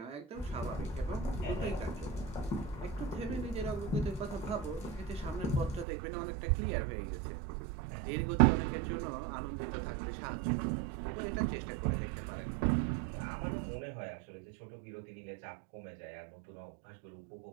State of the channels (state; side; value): drops out; left; at 5.9 s